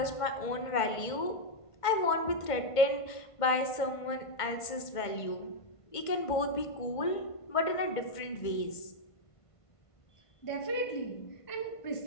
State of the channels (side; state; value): right; late; 1.5 ms